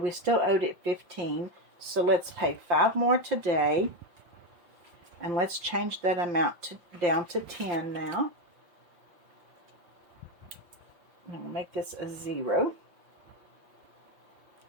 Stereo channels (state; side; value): late; left; 5.5 ms